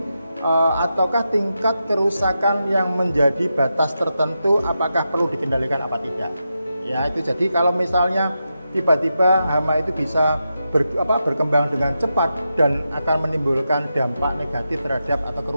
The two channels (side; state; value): both; inverted; correlation -0.88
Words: ataukah tingkat kerusakan yang menjadi batas tertentu apakah perlu dikendalikan apa tidak. Ya, itu jadi kalau misalnya tiba-tiba hama itu bisa berkembang dengan cepat dan akan menimbulkan dampak negatif terhadap atau